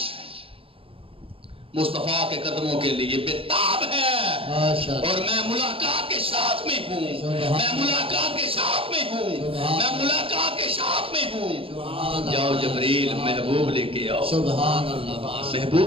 مصطفیٰ کے قدموں کے لیے بےتاب ہے, ماشاءاللہ. اور میں ملاقات کے شوق میں ہوں, میں ملاقات کے شوق میں ہوں, میں ملاقات کے شوق میں ہوں. جاؤ جبرائیل محبوب لے کے آؤ, سبحان اللہ.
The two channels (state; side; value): late; left; 0.27 ms